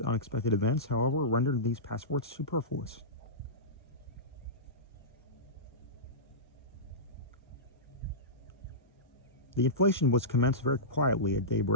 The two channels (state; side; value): normal; both; correlation -0.17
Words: Unexpected events, however, rendered these passports superfluous. The inflation was commenced very quietly at